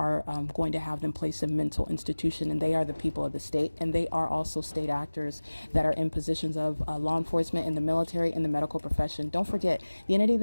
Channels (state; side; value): inverted; both; correlation -1.00